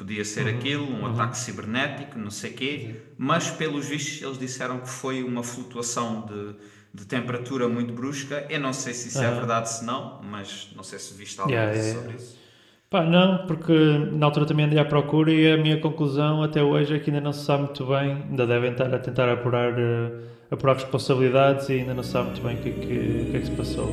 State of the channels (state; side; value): identical; both; correlation 1.00